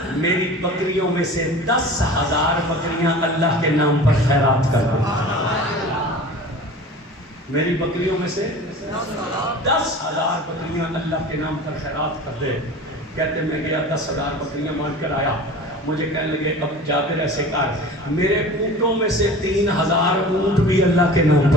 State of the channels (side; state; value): both; normal; correlation 0.38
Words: میری بکریوں میں سے 10,000 بکریاں اللہ کے نام پر خیرات کر دو. میری بکریوں میں سے 10,000 بکریاں اللہ کے نام پر خیرات کر دے. کہتے میں گیا 10,000 بکریاں مان کر آیا. مجھے کہنے لگے اب جابر ایسے کر میرے اونٹوں میں سے 3,000 اونٹ بھی اللہ کے نام